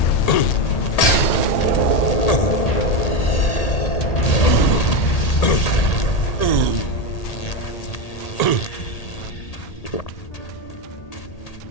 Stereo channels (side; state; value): right; late; 1.8 ms